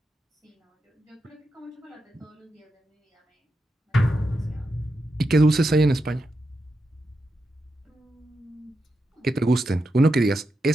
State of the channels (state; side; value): normal; both; correlation 0.87